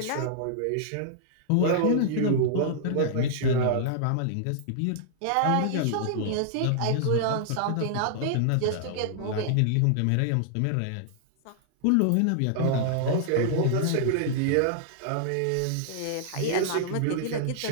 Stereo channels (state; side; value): different; both; correlation -0.01